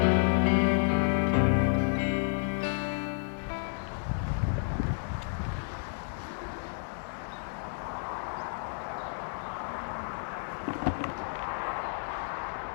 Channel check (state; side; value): silent; right; 57 dB below the other